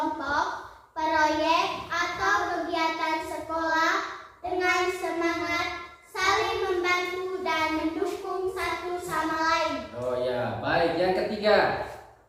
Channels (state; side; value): identical; both; correlation 1.00